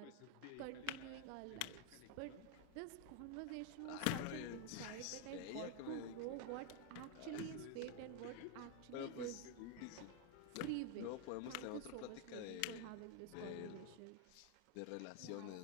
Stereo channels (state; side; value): different; both; correlation 0.01